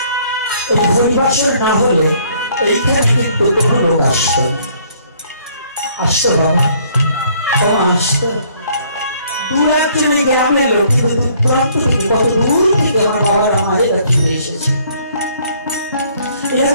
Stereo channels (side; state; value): both; inverted; correlation -0.62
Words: এই হরিবাসর না হলে এইখানে কিন্তু কোনো লোক আসত না। আসতো বাবা, কমা আসতো। দূর একজন গ্রামের লোক, কিন্তু দূরান্ত থেকে, কত দূর থেকে আমার বাবার আমাদের চলে এসেছে, এরা